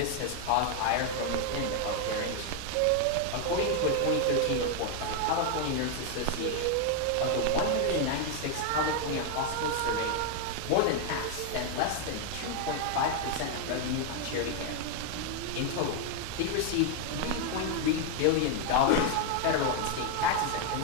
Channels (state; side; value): different; both; correlation 0.01